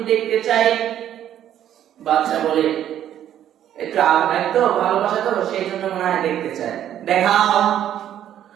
দেখতে চাই। বাদশাহ বলে একটু একটু ভালোবাসা করো সেই জন্য মনে হয় দেখতে চাই, দেখাও।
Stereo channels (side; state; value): left; quieter; 10.9 dB